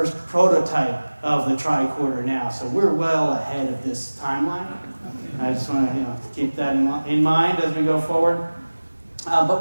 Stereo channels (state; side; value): inverted; both; correlation -1.00